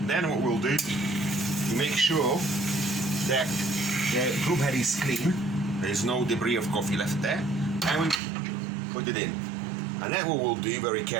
Then what we'll do, we make sure that the group head is clean, there is no debris of coffee left there, and we put it in. And then what we'll do very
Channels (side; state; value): left; drops out; at 8.2 s